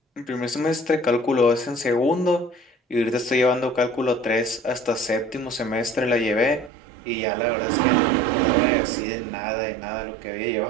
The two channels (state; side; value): drops out; left; at 6.7 s